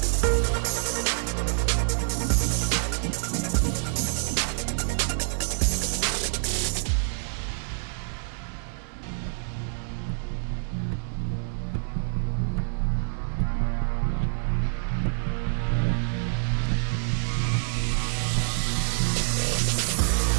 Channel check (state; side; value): silent; left; digital silence